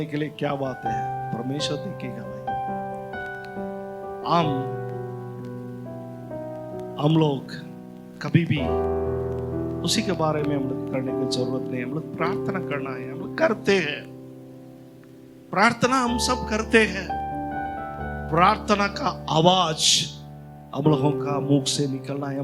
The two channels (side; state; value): both; identical; correlation 1.00